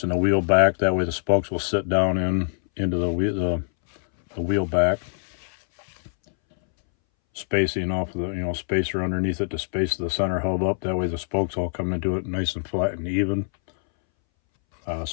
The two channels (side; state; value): right; silent; 62 dB below the other